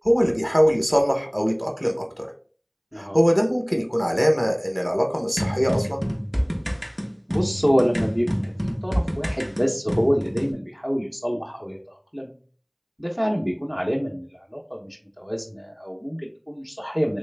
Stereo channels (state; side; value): identical; both; correlation 1.00